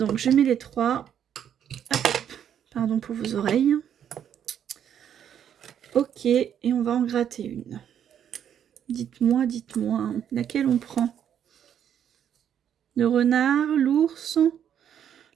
je mets les 3. Hop. Pardon pour vos oreilles. Ok, et on va en gratter une. Dites-moi, laquelle on prend? Le renard, l'ours,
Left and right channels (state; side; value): quieter; left; 9.2 dB